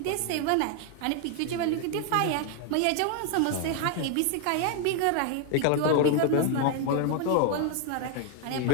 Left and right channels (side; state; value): both; different; correlation 0.01